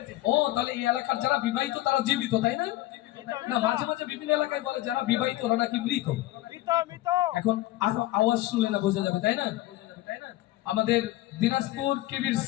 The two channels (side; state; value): right; quieter; 16.4 dB